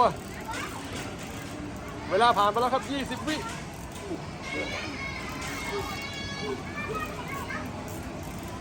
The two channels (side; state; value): both; identical; correlation 1.00